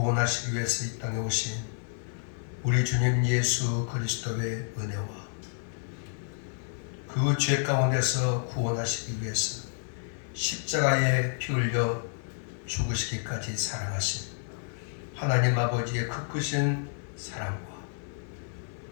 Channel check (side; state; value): right; silent; digital silence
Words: 위해서 이 땅에 오신 우리 주님 예수 그리스도의 은혜와 그 죄 가운데서 구원하시기 위해서 십자가에 피 흘려 죽으시기까지 사랑하신 하나님 아버지의 그 크신 사랑과